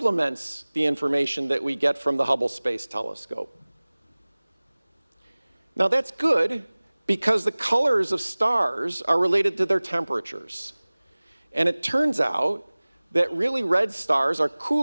the information that we get from the Hubble Space Telescope. Now that's good because the colors of stars are related to their temperatures. And it turns out that really red stars are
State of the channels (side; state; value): both; inverted; correlation -1.00